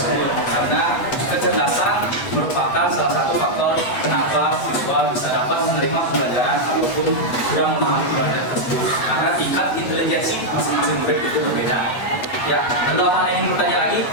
karena kecerdasan merupakan salah satu faktor kenapa siswa bisa dapat menerima pembelajaran ataupun kurang memahami pembelajaran tersebut, karena tingkat intelijensi masing-masing murid itu berbeda. Ya, ada apa yang ingin bertanya lagi?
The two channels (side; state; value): right; late; 8.2 ms